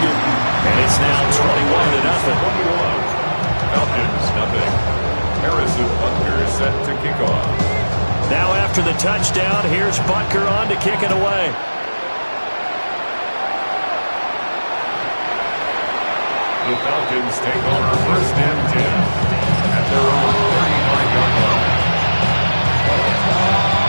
And it's now 21-0. Falcons, nothing. Harrison Butker is set to kick off. Now after the touchdown, here's Butker on to kick it away. The Falcons take over 1st and 10 at their own 39-yard line.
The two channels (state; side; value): inverted; both; correlation -1.00